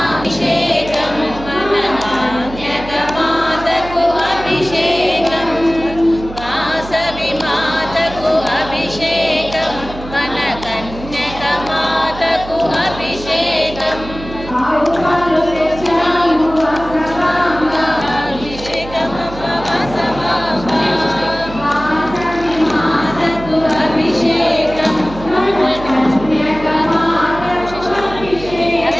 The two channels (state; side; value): noise; right; hum, 13 dB below the sound